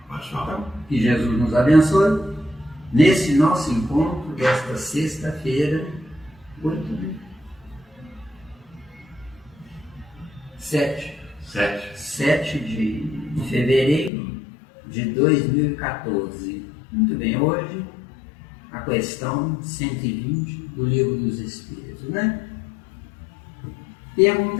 Pode falar. Então, que Jesus nos abençoe nesse nosso encontro desta sexta-feira, 7 de fevereiro de 2014. Muito bem, hoje a questão 120 do Livro dos Espíritos, né?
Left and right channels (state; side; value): drops out; right; at 14.1 s